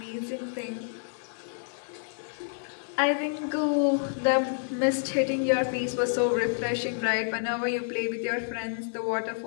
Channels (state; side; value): silent; right; digital silence